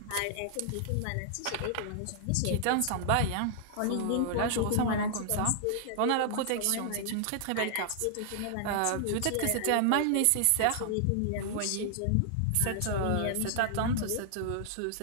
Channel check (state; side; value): different; both; correlation -0.01